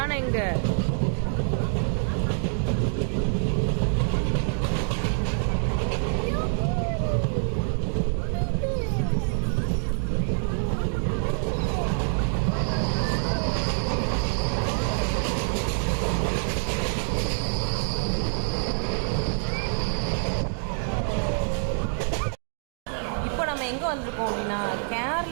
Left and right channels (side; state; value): left; silent; digital silence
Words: எங்க? எங்கே வந்திருக்கோம் அப்படின்னா